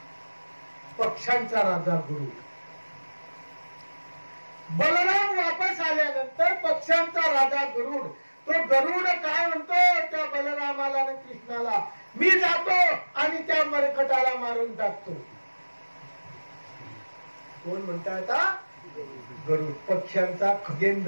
पक्ष्यांचा राजा गरुड. बलराम वापस आल्यानंतर पक्ष्यांचा राजा गरुड, तो गरुड काय म्हणतो त्या बलरामाला आणि कृष्णाला, मी जातो आणि त्या मरकटाला मारून टाकतो. कोण म्हणता आता? गरुड, पक्ष्यांचा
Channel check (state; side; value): inverted; both; correlation -1.00